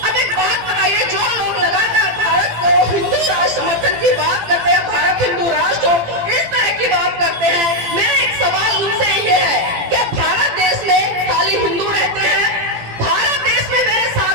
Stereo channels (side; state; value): left; late; 18 ms